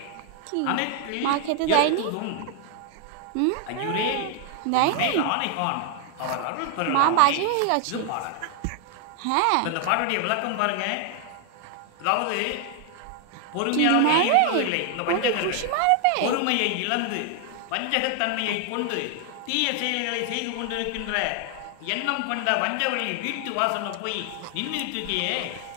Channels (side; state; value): both; different; correlation 0.00